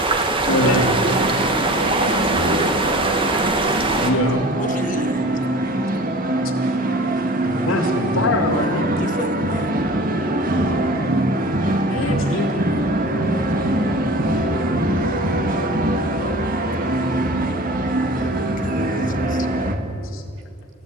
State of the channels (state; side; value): normal; both; correlation 0.40